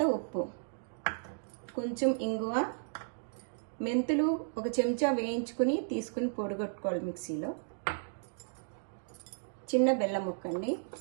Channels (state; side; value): silent; left; digital silence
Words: ఉప్పు, కొంచెం ఇంగువ, మెంతులు ఒక చెంచా వేయించుకుని తీసుకుని పొడిగొట్టుకోవాలి మిక్సీలో, చిన్న బెల్లం ముక్క అండి,